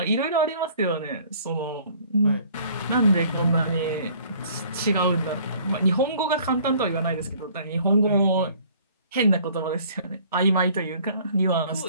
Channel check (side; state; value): both; inverted; correlation -0.55